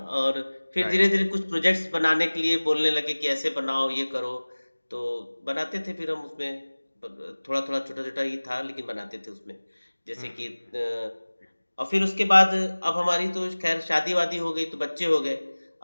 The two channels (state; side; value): inverted; both; correlation -1.00